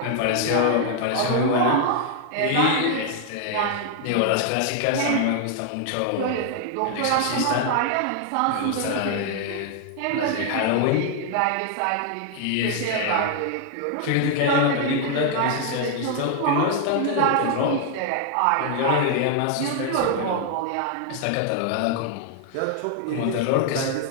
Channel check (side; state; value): both; different; correlation 0.00